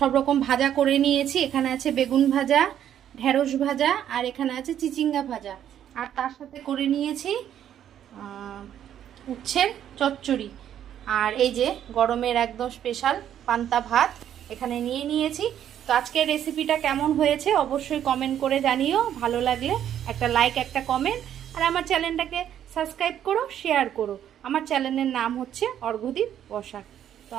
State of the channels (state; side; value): quieter; left; 10.3 dB